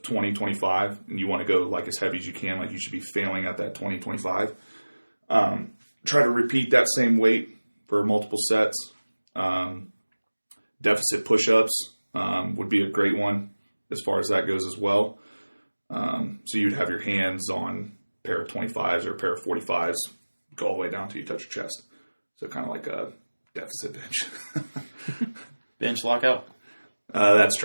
20, 25, and you want to go like as heavy as you can, like you should be failing at that 20, 25. Try to repeat that same weight for multiple sets. Deficit push-ups would be a great one as far as that goes as well. So you'd have your hands on a pair of 25s or a pair of 45s, go all the way down till you touch your chest. So kind of like a deficit bench. Bench lockout? That's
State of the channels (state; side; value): inverted; both; correlation -1.00